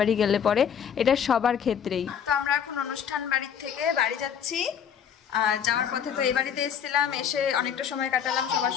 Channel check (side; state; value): right; quieter; 8.1 dB